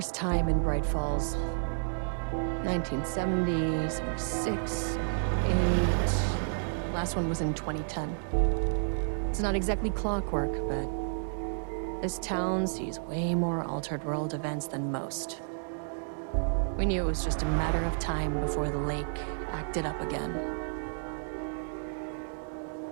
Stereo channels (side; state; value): left; silent; digital silence